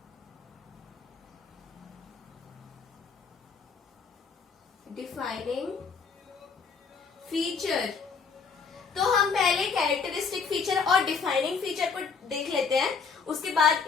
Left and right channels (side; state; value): right; quieter; 5.4 dB